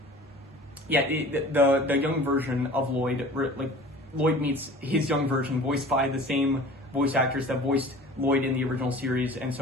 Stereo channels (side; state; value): both; normal; correlation 0.43